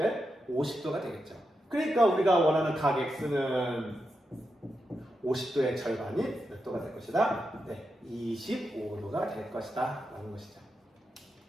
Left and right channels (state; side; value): normal; both; correlation 0.87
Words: 50도가 되겠죠. 그러니까 우리가 원하는 각 x는 50도의 절반이 몇 도가 될 것이다? 네, 25도가 될 것이다 라는 것이죠.